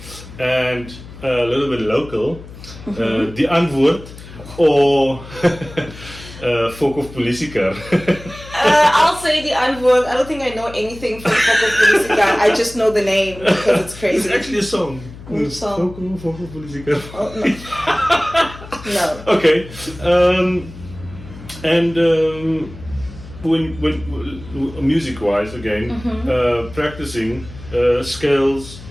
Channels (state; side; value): noise; left; hum, 16 dB below the sound